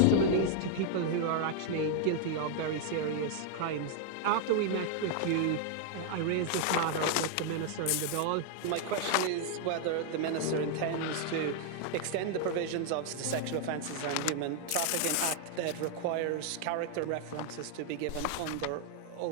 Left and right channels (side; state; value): both; different; correlation 0.00